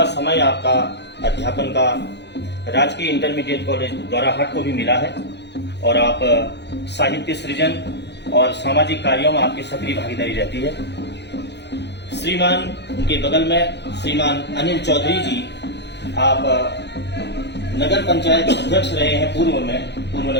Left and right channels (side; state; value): right; late; 0.50 ms